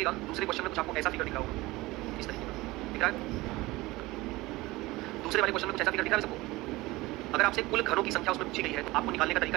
दूसरे क्वेश्चन में कुछ आपको ऐसा फिगर दिखा होगा, इस तरीके का दिख रहा है, दूसरे वाले क्वेश्चन में कुछ ऐसा फिगर दिख रहा है सबको, अगर आपसे कुल घरों की संख्या उसमें पूछी गई है तो आपको निकालने का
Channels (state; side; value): quieter; left; 20.2 dB